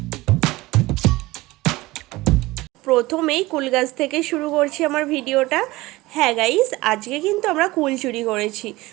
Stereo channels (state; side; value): quieter; left; 19.9 dB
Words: প্রথমেই কুল গাছ থেকে শুরু করছি আমার ভিডিওটা। হ্যাঁ গাইস, আজকে কিন্তু আমরা কুল চুরি করেছি,